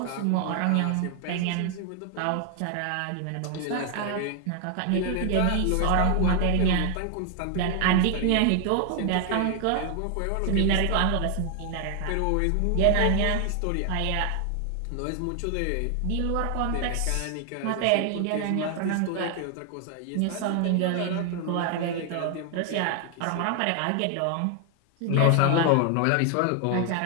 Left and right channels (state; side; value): different; both; correlation 0.00